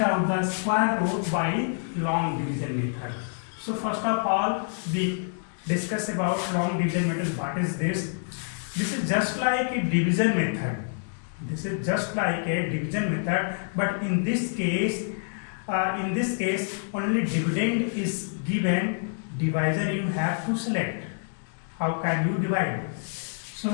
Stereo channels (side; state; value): right; silent; digital silence